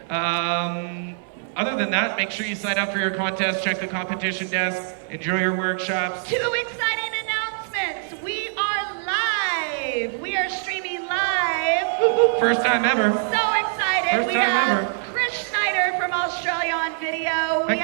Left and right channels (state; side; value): silent; left; 59 dB below the other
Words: Other than that, make sure you sign up for your contest, check the competition desk, enjoy your workshops. Two exciting announcements. We are live. We are streaming live. First time ever. So excited. First time ever. Chris Schneider from Australia on video. We